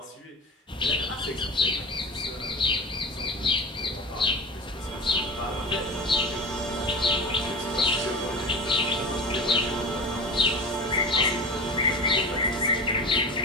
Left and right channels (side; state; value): both; normal; correlation 0.31